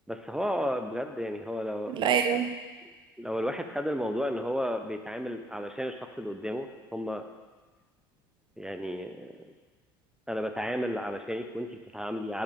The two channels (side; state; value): both; normal; correlation 0.67